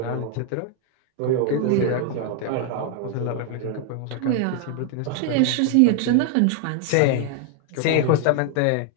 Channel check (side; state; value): both; different; correlation 0.00